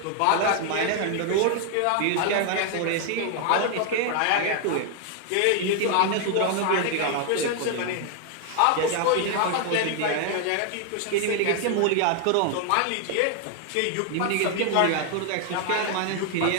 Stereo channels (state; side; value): different; both; correlation 0.00